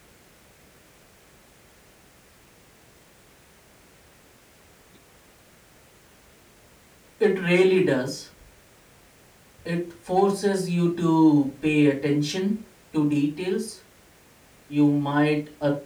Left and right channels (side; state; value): both; identical; correlation 1.00